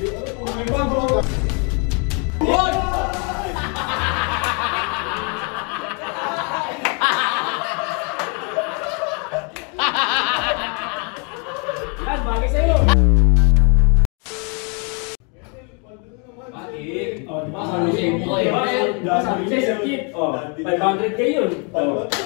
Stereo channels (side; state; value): right; quieter; 35.6 dB